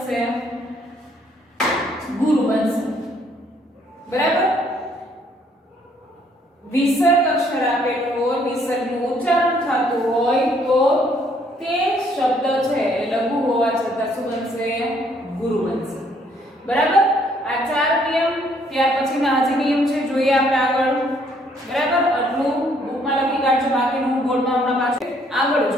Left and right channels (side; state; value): both; normal; correlation 0.66